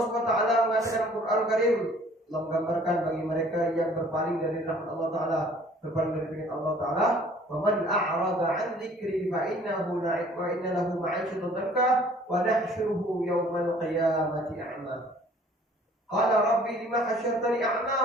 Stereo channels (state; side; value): normal; both; correlation 0.54